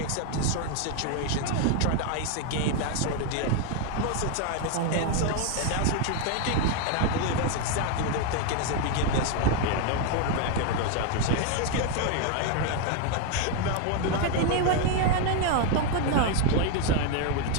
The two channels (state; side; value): different; both; correlation 0.01